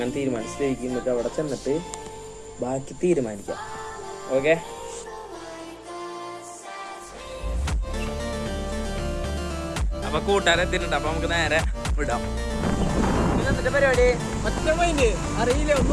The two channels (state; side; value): identical; both; correlation 1.00